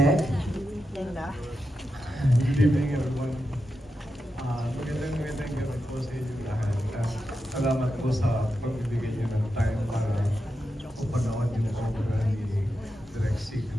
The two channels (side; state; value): both; normal; correlation 0.88